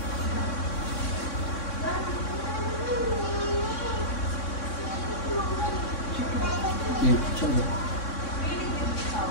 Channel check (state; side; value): late; right; 3.6 ms